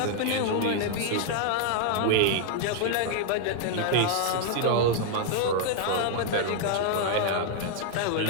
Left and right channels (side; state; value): both; different; correlation 0.00